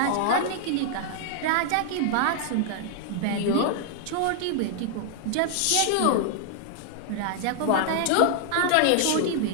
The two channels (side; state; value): both; different; correlation 0.00